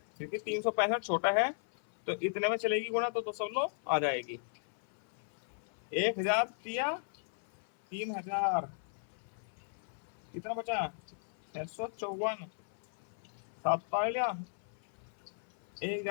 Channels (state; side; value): silent; right; 54 dB below the other